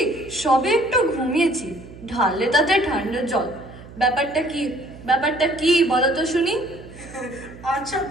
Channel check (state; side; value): noise; right; hum, 18 dB below the sound